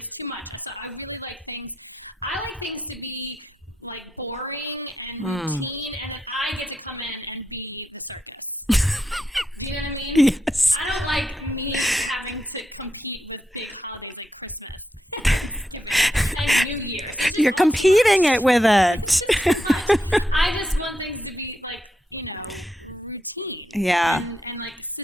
too much. So I really like things to be like boring and routine, and then I get to come in and be the circus. You know what I mean? Yes. I don't like me having to compete with big holidays like Christmas and New Year. You're competing it with it. I just want things to be like, routine. Yeah. And like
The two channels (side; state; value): both; normal; correlation 0.83